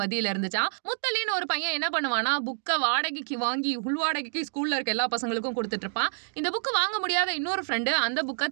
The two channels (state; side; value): silent; left; digital silence